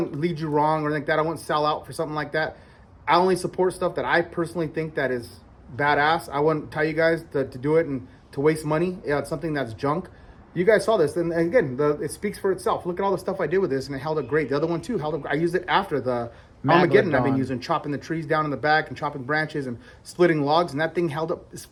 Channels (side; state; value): both; identical; correlation 1.00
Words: lead you wrong or anything like that. I wouldn't sell out for something like that. I only support stuff that I personally think that is badass. I wouldn't tell you guys to do it and to waste money. Yeah, it's something that's junk. You guys saw this, and again, it speaks for itself. Look at all the stuff I did with this, and it held up great. The other one too held up. I used it after the Armageddon. I've been using, chopping the trees down in the back and chopping branches and splitting logs, and that thing held up. It's